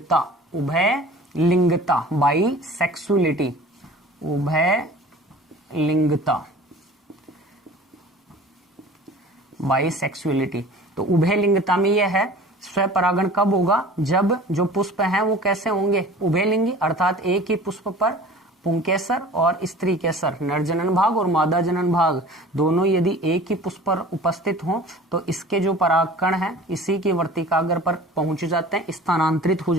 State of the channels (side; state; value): both; normal; correlation 0.43